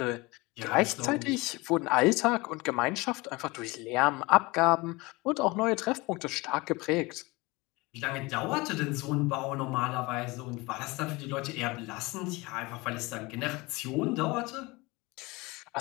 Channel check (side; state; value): right; quieter; 23.6 dB